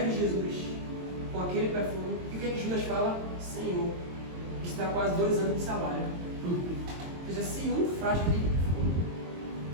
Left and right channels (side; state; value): left; late; 22 ms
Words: de Jesus com aquele perfume. E o que Judas fala? Senhor, isso dá quase 2 anos de salário. Ou seja, se um frasco de